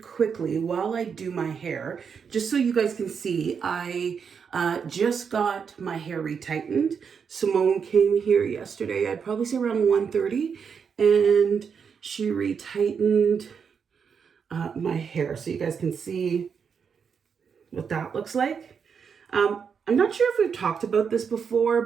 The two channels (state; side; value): quieter; left; 6.5 dB